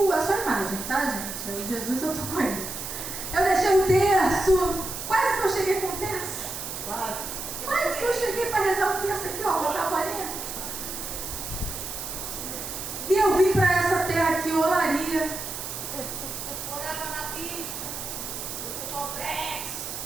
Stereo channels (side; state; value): right; noise; hiss, 7 dB below the sound